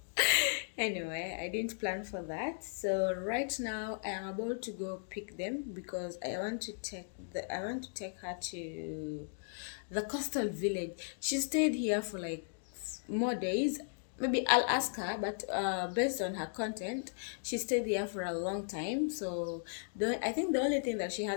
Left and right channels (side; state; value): right; silent; digital silence